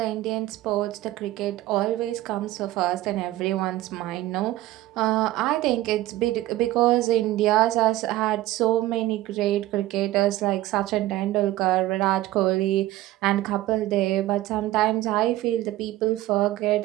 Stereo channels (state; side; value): quieter; left; 15.8 dB